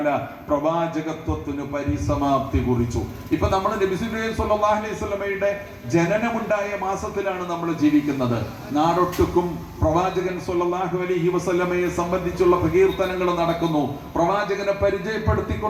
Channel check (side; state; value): both; identical; correlation 1.00